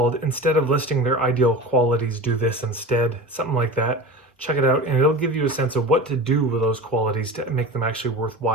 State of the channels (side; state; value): both; normal; correlation 0.31